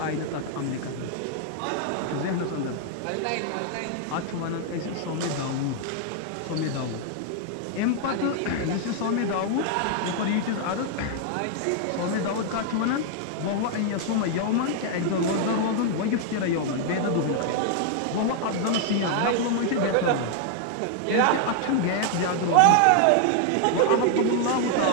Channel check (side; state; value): both; different; correlation 0.00